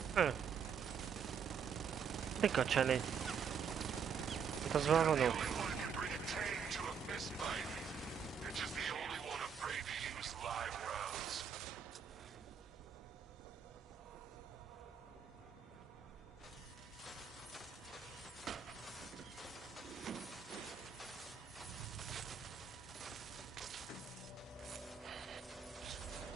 Mika cseléd? Hát az már vonó.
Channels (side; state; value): left; quieter; 6.8 dB